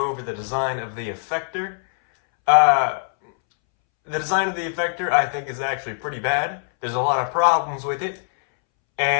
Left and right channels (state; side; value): silent; right; 64 dB below the other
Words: over the design of the Effector. The design of the Effector I think is actually pretty bad. There's a lot of problems with it,